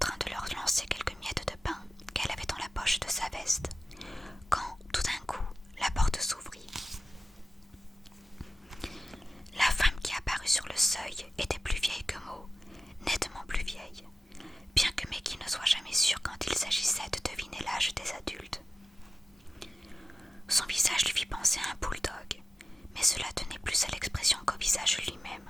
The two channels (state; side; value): normal; both; correlation 0.94